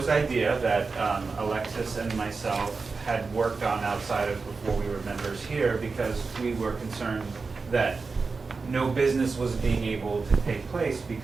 idea that Alexis and myself had worked on outside of before we were members here, because we were concerned that no business was being able to take place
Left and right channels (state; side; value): quieter; left; 4.4 dB